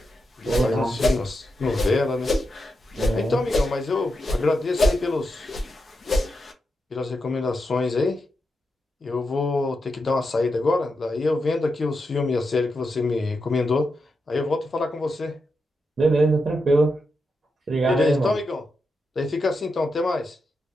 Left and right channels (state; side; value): normal; both; correlation 0.86